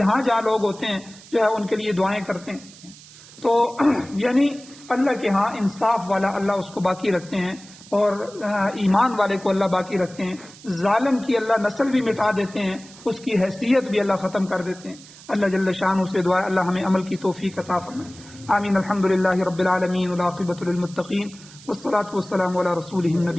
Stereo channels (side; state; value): right; noise; hiss, 20 dB below the sound